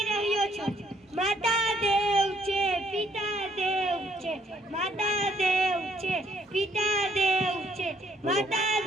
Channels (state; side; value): normal; both; correlation 0.67